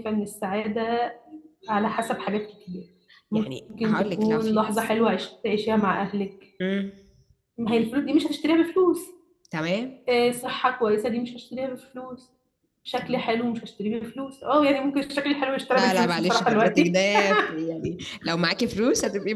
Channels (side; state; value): both; identical; correlation 1.00